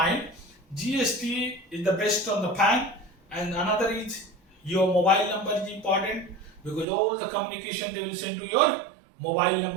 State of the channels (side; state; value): left; drops out; at 6.9 s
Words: GST is the best on the PAN, and another is your mobile number is important because all the communication they will send to your mobile